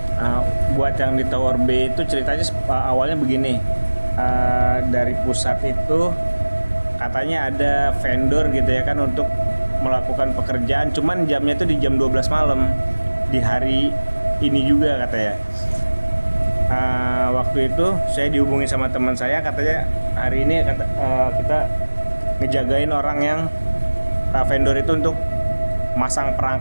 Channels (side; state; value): both; inverted; correlation -1.00